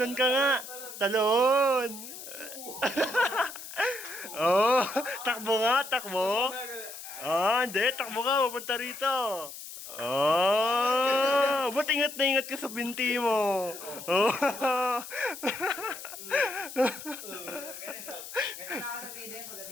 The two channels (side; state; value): left; noise; hiss, 12 dB below the sound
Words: ka nga. Talon. Oh, takbo nga, takbo. Ah, hindi, takbo ka, pupunta rito. Oh, ba't ingat na ingat ka sa binti mo? Oh. Ganito na ako sa video